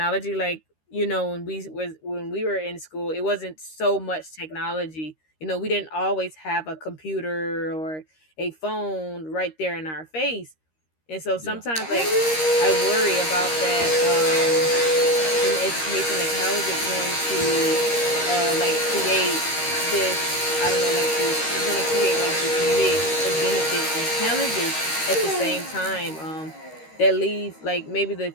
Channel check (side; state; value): right; late; 13 ms